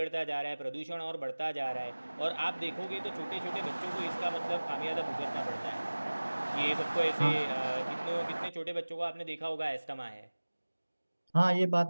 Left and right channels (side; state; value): both; inverted; correlation -1.00